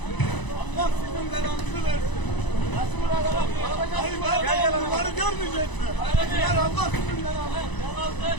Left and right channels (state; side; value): late; right; 1.0 ms